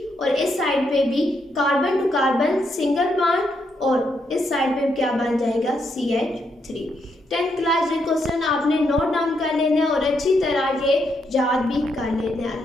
और इस साइड पे भी carbon to carbon single bond, और इस साइड पे क्या बन जाएगा? CH3। 10th क्लास ये क्वेश्चन आपने नोट डाउन कर लेना है और अच्छी तरह ये याद भी कर लेना है।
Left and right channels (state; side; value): normal; both; correlation 0.78